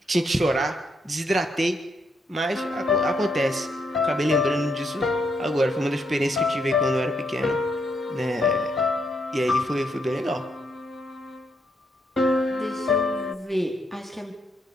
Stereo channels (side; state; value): both; normal; correlation 0.77